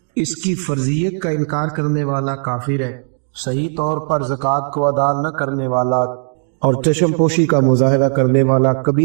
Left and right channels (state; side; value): silent; left; 67 dB below the other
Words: اس کی فرضیت کا انکار کرنے والا کافر ہے، صحیح طور پر زکوٰۃ کو ادا نہ کرنے والا اور چشم پوشی کا مظاہرہ کرنے والا